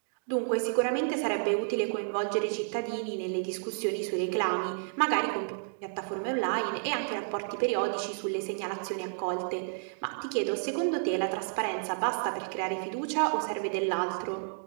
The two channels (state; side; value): silent; left; digital silence